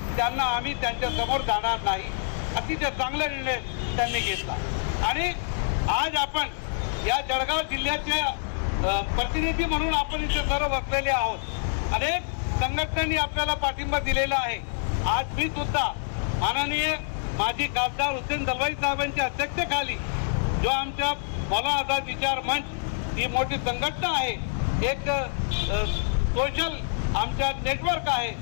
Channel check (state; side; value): silent; right; 61 dB below the other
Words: त्यांना आम्ही त्यांच्या समोर जाणार नाही। अतिशय चांगला निर्णय त्यांनी घेतला। आणि आज आपण या जळगाव जिल्ह्याच्या प्रतिनिधी म्हणून आपण इथे सर्व बसलेले आहोत। अनेक संघटनांनी आपल्याला पाठिंबा दिलेला आहे। आज मी सुद्धा माननीय माजी खासदार हुसेन दलवाई साहेबांच्या अध्यक्षतेखाली जो आमच्या मौलाना आझाद विचार मंच ही मोठी संघटना आहे, एक सोशल आमच्या नेटवर्क आहे,